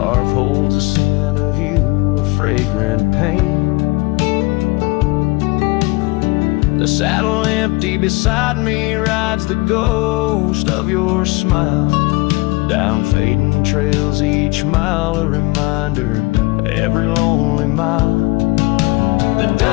holds a scent of you, a fragrant pain. The saddle empty beside me rides the ghost of your smile. Down fading trails each mile, a reminder of every lonely mile. The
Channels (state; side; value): quieter; right; 23.7 dB